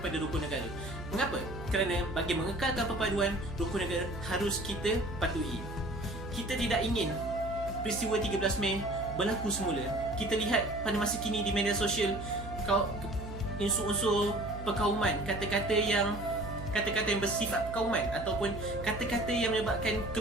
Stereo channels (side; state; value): right; noise; hum, 10 dB below the sound